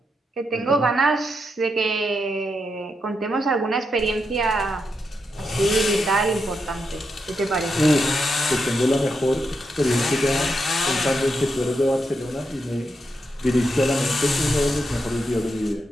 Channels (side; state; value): both; normal; correlation 0.84